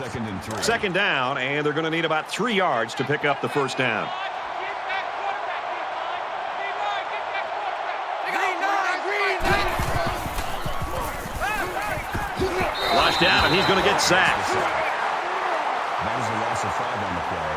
and 3. 2nd down, and they're going to need about 3 yards to pick up the first down. Get that quarterback, get that quarterback. Flushed out, and he's going to get sacked. That is a loss of 5 on the play.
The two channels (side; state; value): both; identical; correlation 1.00